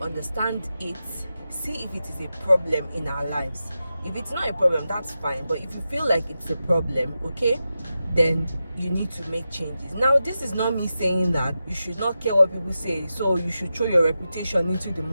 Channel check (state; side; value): inverted; both; correlation -0.91